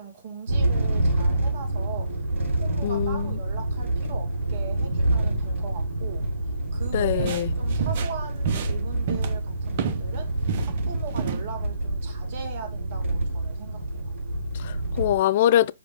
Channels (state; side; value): inverted; both; correlation -0.67